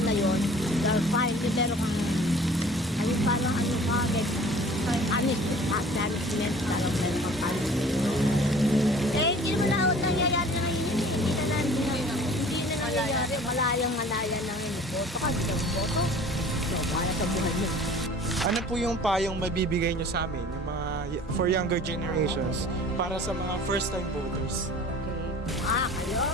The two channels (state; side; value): normal; both; correlation 0.47